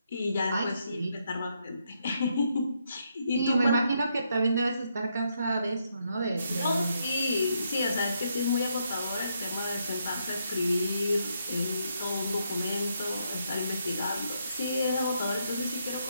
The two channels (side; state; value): both; inverted; correlation -0.77